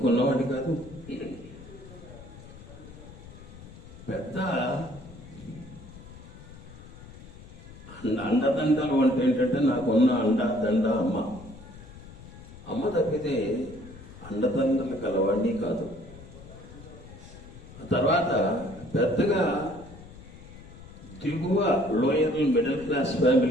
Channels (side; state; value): left; noise; rumble, 17 dB below the sound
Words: కాదు, పెద్ద అండదండలు అంటే ఏంటంటే నాకున్న అండదండ అమ్మ. అమ్మ తప్పితే అండదండలు కలవాడిని కాదు. తర్వాత పెద్దగా దిగువ లోయర్ మిడిల్ క్లాస్